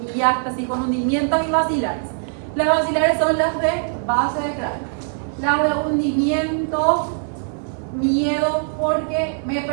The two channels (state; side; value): silent; left; digital silence